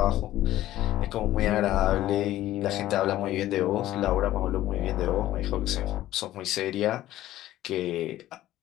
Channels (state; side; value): quieter; right; 14.3 dB